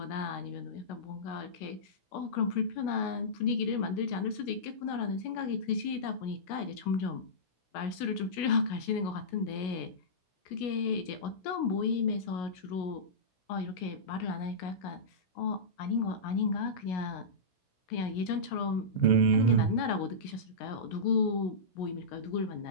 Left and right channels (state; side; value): late; right; 16 ms